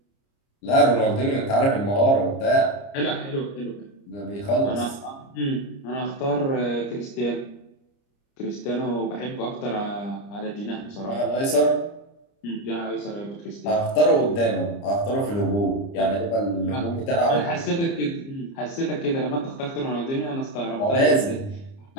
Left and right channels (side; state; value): right; late; 30 ms